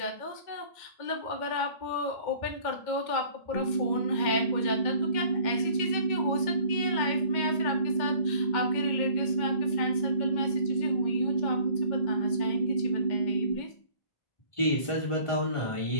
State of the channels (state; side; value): late; right; 2.1 ms